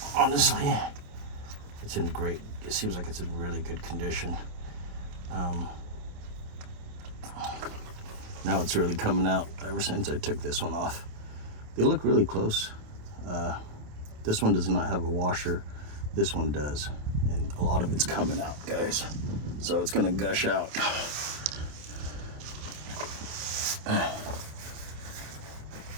Honestly, it's in great, it seems like it's in really good condition. Now it's really coming out ever since I took this one off. They look really close. This one does not have a washer. This one does. And a lot of it's coming out, guys. So it's gonna gush out.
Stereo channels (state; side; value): late; left; 27 ms